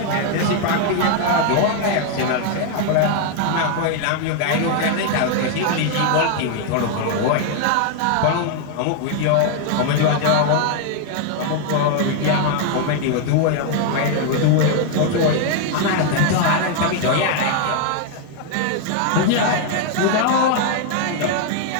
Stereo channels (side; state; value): both; different; correlation 0.00